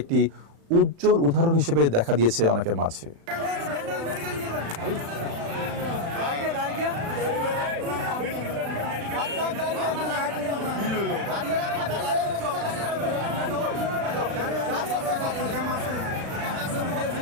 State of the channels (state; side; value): late; left; 36 ms